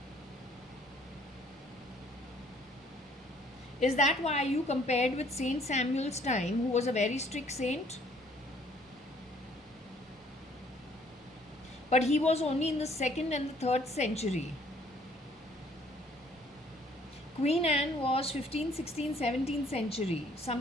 Is that why you compared with Saint Samuel's time, who was a very strict saint? But he was only in the 2nd and the 3rd century. Queen Anne was 15th, 16th, 17th century,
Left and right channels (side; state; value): both; normal; correlation 0.60